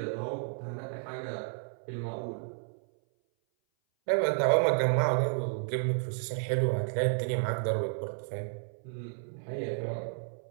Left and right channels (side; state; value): left; silent; 57 dB below the other